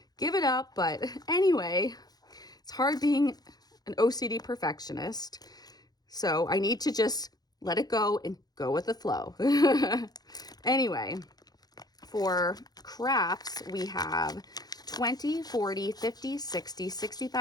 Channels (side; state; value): right; late; 0.19 ms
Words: give it up. But anyway, it's hard being an OCD perfectionist, so I need to just let it go and go with the flow. Anyway, for crafts, we have 20, 40, 50, 60,